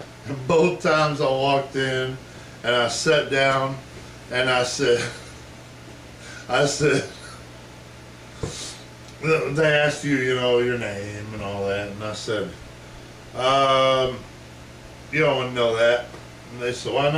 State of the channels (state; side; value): identical; both; correlation 1.00